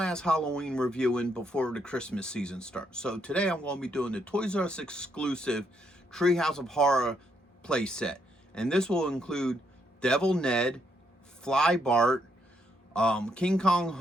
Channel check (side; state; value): both; normal; correlation 0.75